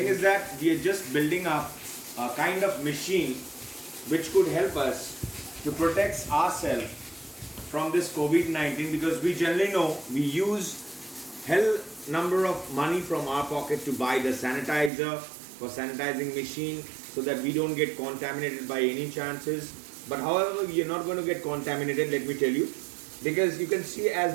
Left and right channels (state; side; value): drops out; left; at 14.9 s